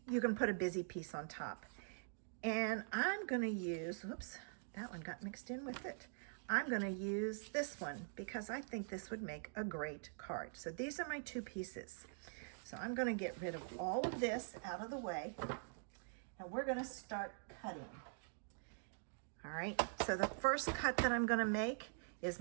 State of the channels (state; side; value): silent; left; digital silence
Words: you can put a busy piece on top. And I'm going to use, oops, that one got mixed in with it. I'm going to use this one because I think this would make a great card. So these are my two pieces. So I'm going to get rid of all of this out of the way and we're going to start cutting. All right, so the first cut that I'm going to make is